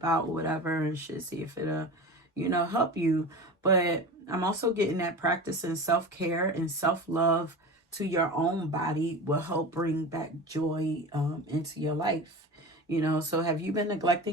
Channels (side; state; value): both; normal; correlation 0.31